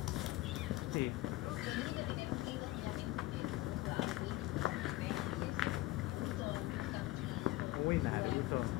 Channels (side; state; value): right; quieter; 18.1 dB